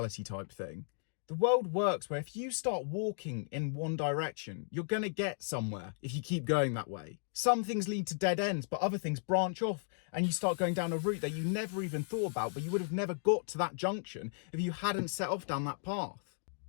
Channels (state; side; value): silent; right; digital silence